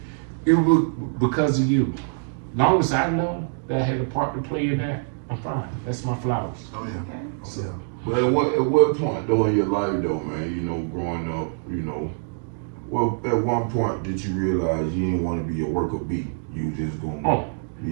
it was because of you. Long as I know that I had a part to play in that, I'm fine. That's my flowers. Oh, yeah. So, but at what point though in your life though, man, you know, growing up, you know, one point did you realize you didn't want to be a worker bee? You just going. Oh,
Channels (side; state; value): left; silent; digital silence